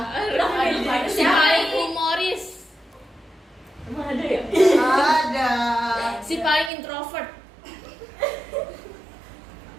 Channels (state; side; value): drops out; left; at 6.7 s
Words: Si paling humoris. Emang ada ya? Ada. Si paling introvert.